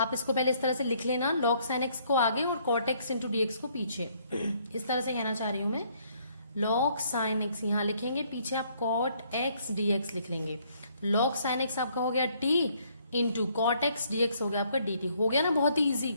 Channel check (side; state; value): both; inverted; correlation -0.66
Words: इसको पहले इस तरह से लिख लेना, log sin x को आगे और cot x इंटू dx को पीछे। इस तरह से कहना चाह रही हूं मैं, log sin x यहाँ लिखेंगे, पीछे आप cot x dx लिख लेंगे। log sin x आपका हो गया t into cot x dx हो गया आपका dt। हो गया ना, बहुत ही ईजी।